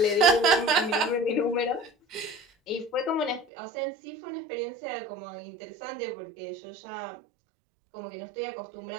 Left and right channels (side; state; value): left; drops out; at 3.5 s